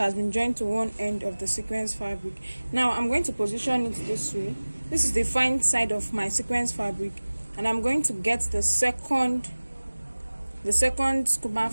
been joined to one end of the sequence fabric. Now I'm going to position it this way. This is the fine side of my sequence fabric, and I'm going to get the second scuba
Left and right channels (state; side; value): inverted; both; correlation -1.00